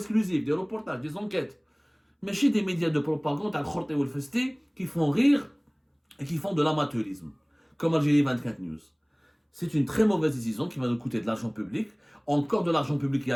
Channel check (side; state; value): both; identical; correlation 1.00